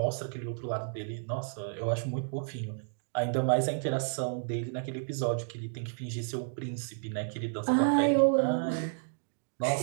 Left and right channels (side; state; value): left; silent; digital silence